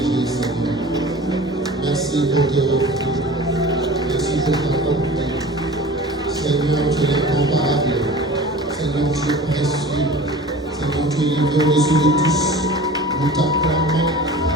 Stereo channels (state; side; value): normal; both; correlation 0.40